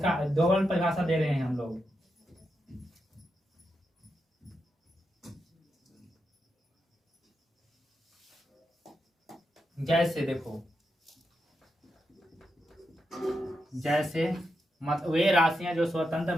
डबल परिभाषा दे रहे हैं हम लोग। जैसे देखो, वे राशियां जो स्वतंत्र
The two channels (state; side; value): normal; both; correlation 0.86